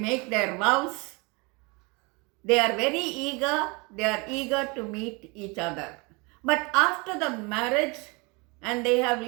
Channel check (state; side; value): quieter; left; 28.5 dB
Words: their vows, they are very eager, they are eager to meet each other. But after the marriage and they have